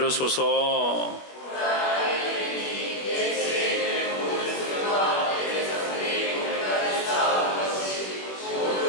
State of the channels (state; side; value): late; right; 21 ms